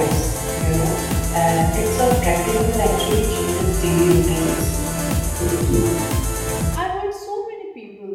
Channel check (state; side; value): identical; both; correlation 1.00